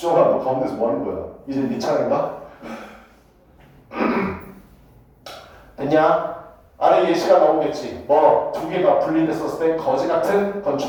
너 가운데서 뭐 하는 거야? 이제 네 차례인가? 됐냐? 아래 예시가 나오겠지. 뭐, 두 개가 분리됐었을 때 거지 같은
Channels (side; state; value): both; identical; correlation 1.00